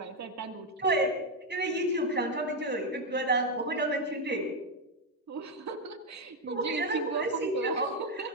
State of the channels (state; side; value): normal; both; correlation 0.04